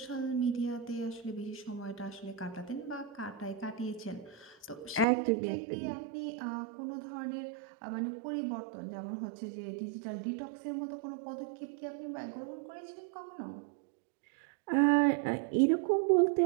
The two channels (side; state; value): left; drops out; at 5.1 s